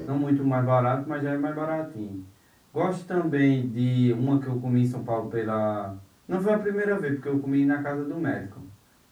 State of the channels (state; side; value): identical; both; correlation 1.00